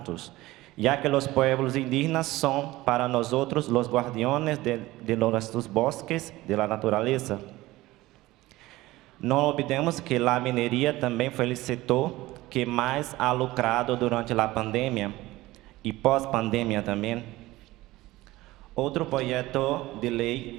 ya que los pueblos indígenas son para nosotros los guardianes de nuestros bosques, de la naturaleza. No olvidemos que la minería también fue el sector que más ha lucrado durante la pandemia y pós-pandemia también. Outro projeto de lei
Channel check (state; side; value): quieter; left; 18.3 dB